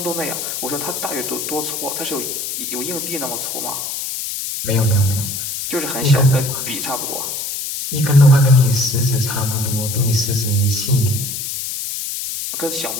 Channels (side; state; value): left; noise; hiss, 4 dB below the sound